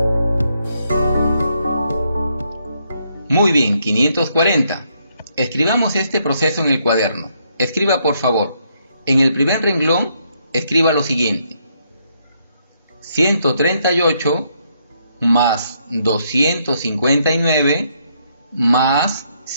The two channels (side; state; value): both; inverted; correlation -0.74